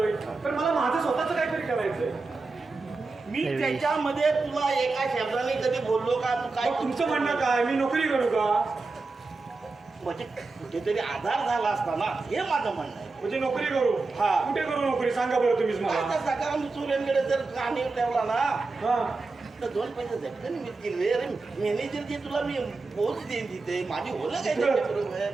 तर मला माझं स्वतःच काहीतरी करायचंय. मी त्याच्यामध्ये तुला एका शब्दाने कधी बोललो का? तू काय तुमचं म्हणणं काय मी नोकरी करू का? म्हणजे कुठेतरी आधार झाला असता ना हे माझं म्हणणं आहे. म्हणजे नोकरी करू? हा. कुठे करू नोकरी सांगा बरं तुम्हीच मला. सकाळ चुऱ्यांकडे जर कानी ठेवला ना हा तर 2 पैसे झटकन मिळतील. अरे मॅनेजर जे तुला मी पोच देईन तिथे माझी होलं काय बरोबर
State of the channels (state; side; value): quieter; left; 3.8 dB